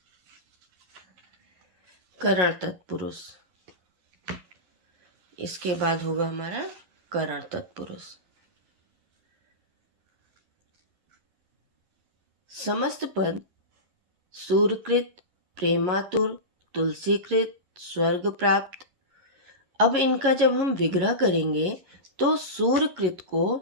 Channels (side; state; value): left; late; 11 ms